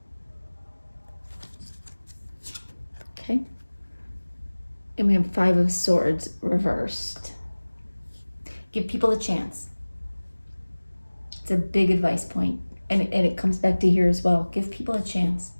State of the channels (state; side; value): inverted; both; correlation -1.00